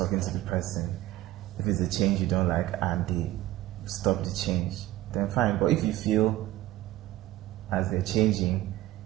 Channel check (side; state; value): left; quieter; 15.4 dB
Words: to the person, if it's a change you don't like and they stop the change, then fine. But if you feel as they're changing,